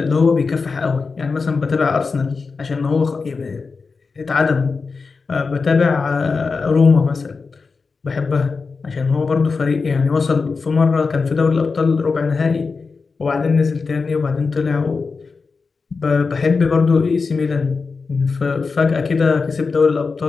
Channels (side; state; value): right; quieter; 4.6 dB